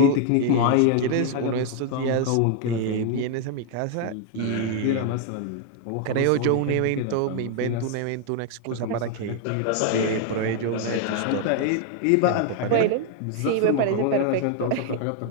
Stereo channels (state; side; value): different; both; correlation 0.00